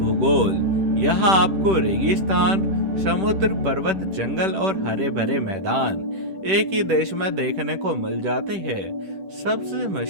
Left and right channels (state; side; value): late; left; 10 ms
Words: यहाँ आपको रेगिस्तान, समुद्र, पर्वत, जंगल और हरे भरे मैदान एक ही देश में देखने को मिल जाते हैं। सबसे